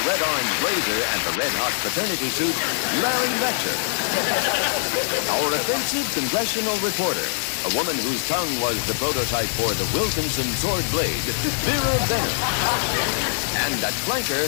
red-orange blazer and the red-hot fraternity suit, Larry Letcher. Our offensive congressional reporter, a woman whose tongue was the prototype for the Wilkinson sword blade, Vera Bennett. And at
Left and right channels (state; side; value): silent; right; digital silence